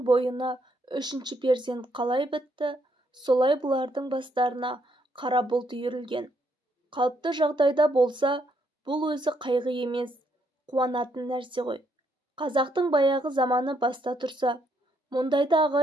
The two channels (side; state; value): both; normal; correlation 0.74